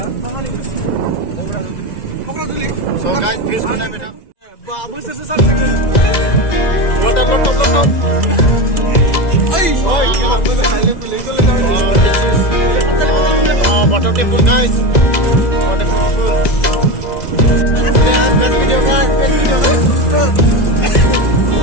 So guys, please mana beta? Babu sesat dengan. Water lotop. This is water temple guys. Water temple. Best video guys.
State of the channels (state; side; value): late; right; 2.0 ms